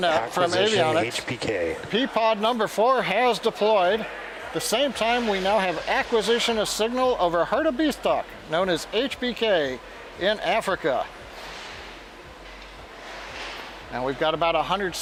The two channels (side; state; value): both; identical; correlation 1.00